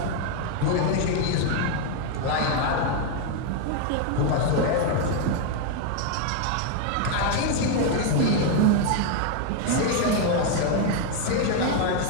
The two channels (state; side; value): different; both; correlation 0.01